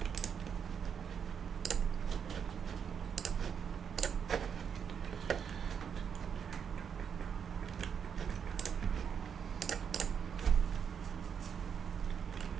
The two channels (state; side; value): quieter; left; 7.3 dB